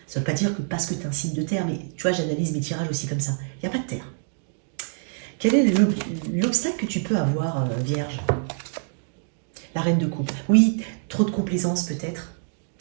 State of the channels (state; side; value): silent; left; digital silence